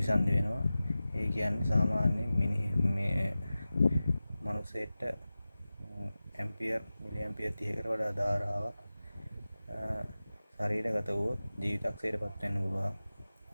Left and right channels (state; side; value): inverted; both; correlation -0.96